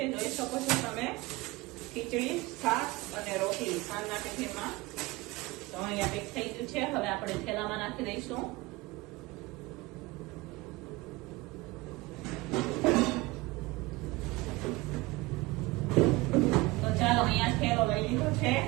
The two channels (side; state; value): left; quieter; 21.8 dB